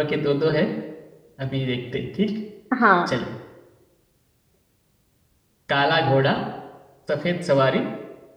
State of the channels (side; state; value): both; identical; correlation 1.00